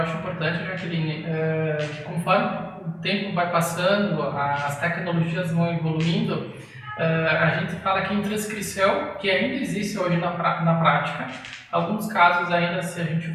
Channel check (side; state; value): both; identical; correlation 1.00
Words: importante, Jaqueline, conforme o tempo vai passando, as tecnologias vão evoluindo, a gente fala que em transcrição, que ainda existe hoje na prática, alguns casos ainda, se a gente